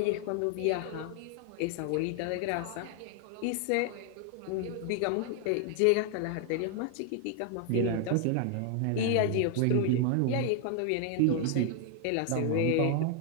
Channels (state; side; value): different; both; correlation 0.00